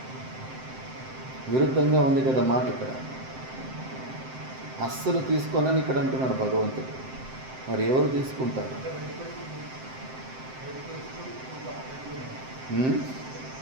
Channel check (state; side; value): late; left; 7.7 ms